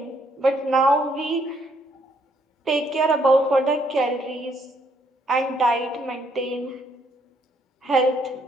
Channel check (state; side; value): normal; both; correlation 0.70